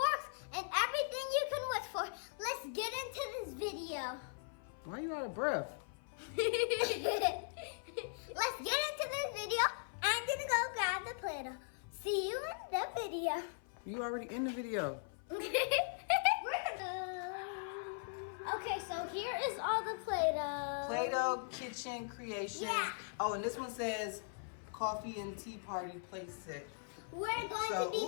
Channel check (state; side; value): silent; right; 51 dB below the other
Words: and everything you can wish for. Let's get into this video. Why are you out of breath? Let's get into this video. I'm gonna go grab the Play-Doh. See you in the video. You already in the video. Okay, so here is all the Play-Doh. Play-Doh kitchen creation. Yeah. Oh, and this one says coffee and tea party playset. We're going to be